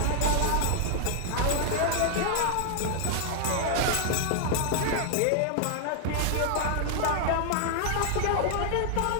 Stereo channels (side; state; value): both; different; correlation 0.00